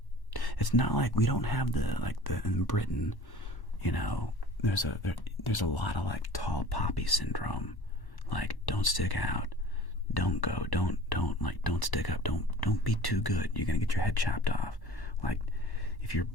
It's not like we don't have in Britain, you know, there's a lot of like tall poppy syndrome. Like, don't stick out. Don't go. Don't stick up. Don't be too good. You're going to get your head chopped off. Like, if you're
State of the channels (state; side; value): late; right; 1.1 ms